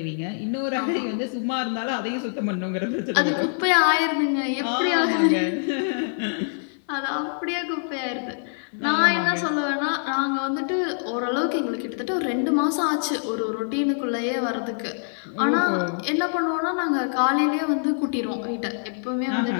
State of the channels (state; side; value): silent; right; 56 dB below the other